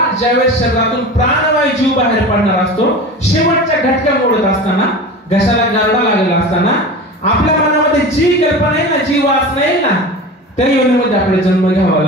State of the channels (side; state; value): both; normal; correlation 0.32